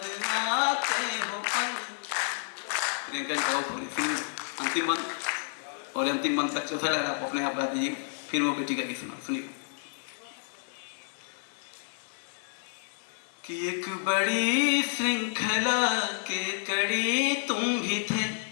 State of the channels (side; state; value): right; silent; digital silence